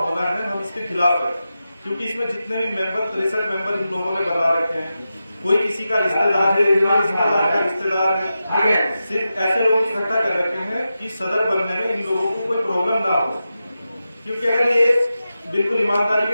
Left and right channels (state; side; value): inverted; both; correlation -0.91